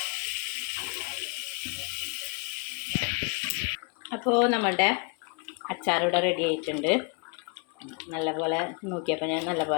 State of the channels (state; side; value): quieter; right; 34.4 dB